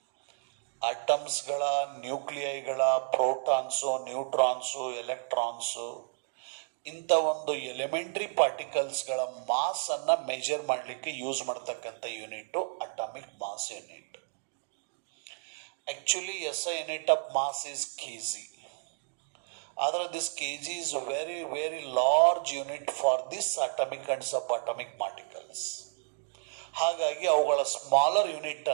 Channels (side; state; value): left; silent; digital silence